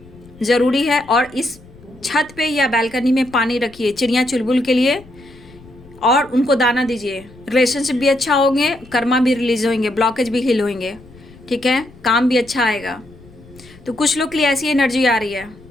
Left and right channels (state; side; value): noise; left; rumble, 23 dB below the sound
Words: ज़रूरी है। और इस छत पे या बालकनी में पानी रखिए, चिड़िया चुलबुल के लिए और उनको दाना दीजिए। रिलेशनशिप भी अच्छा होंगे, कर्मा भी रिलीज होंगे, ब्लॉकेज भी हिल होंगे, ठीक है, काम भी अच्छा आएगा। तो कुछ लोग के लिए ऐसी एनर्जी आ रही है।